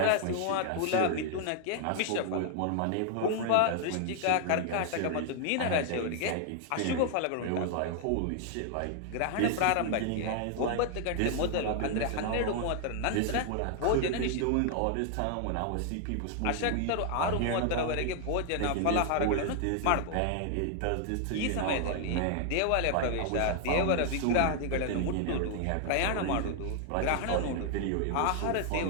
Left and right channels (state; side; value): different; both; correlation 0.00